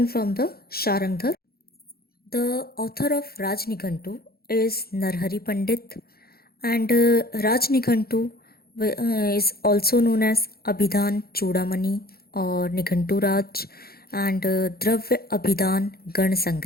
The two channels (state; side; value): late; right; 0.45 ms